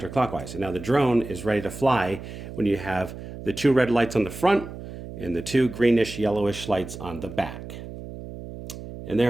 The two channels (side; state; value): right; noise; hum, 12 dB below the sound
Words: And now the drone is ready to fly when you have the 2 red lights on the front and the 2 greenish yellowish lights on the back. And